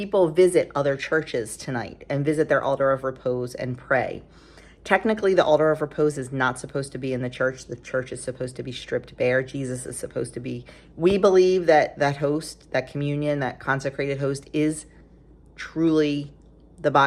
visit other churches tonight and visit their altar of repose and pray. Technically, the altar of repose is not supposed to be in the church. The church is supposed to be stripped bare. Jesus is supposed to be, we believe that that host, that communion, that consecrated host is truly the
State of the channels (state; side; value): identical; both; correlation 1.00